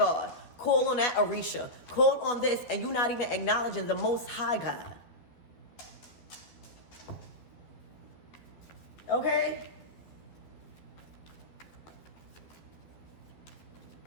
Call on that Orisha. Call on this, and you're not even acknowledging the Most High God. Okay?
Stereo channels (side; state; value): right; late; 12 ms